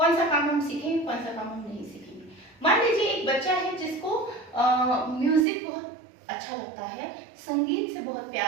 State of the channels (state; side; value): drops out; left; at 5.5 s